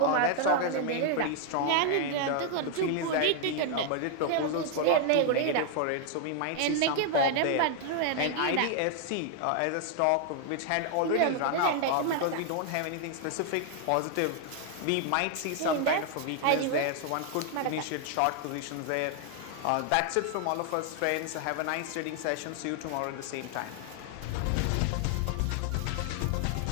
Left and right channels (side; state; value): both; different; correlation 0.00